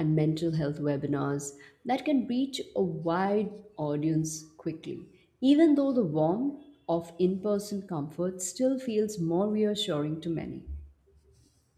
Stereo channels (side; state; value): both; identical; correlation 1.00